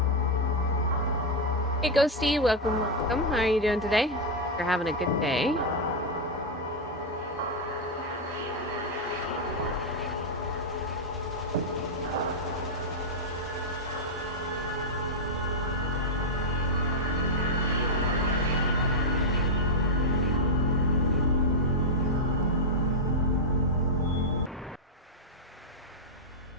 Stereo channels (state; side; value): normal; both; correlation -0.02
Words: Hey Ghosty, welcome, welcome. How are you doing today? You're having a good day.